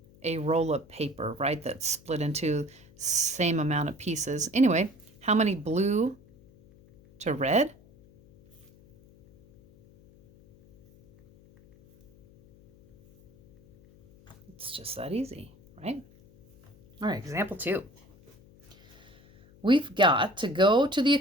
a roll of paper, right, that's split into same amount of pieces. Anyway, how many blue to red? It's just that easy, right? All right, example 2. We've got to go to the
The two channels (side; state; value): left; noise; hum, 26 dB below the sound